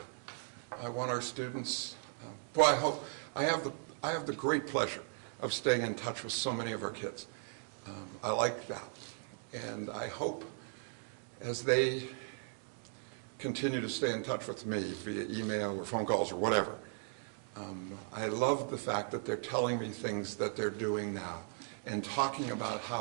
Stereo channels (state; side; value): silent; left; 53 dB below the other